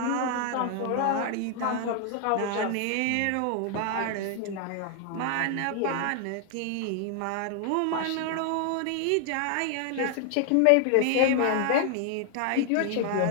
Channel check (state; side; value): different; both; correlation 0.00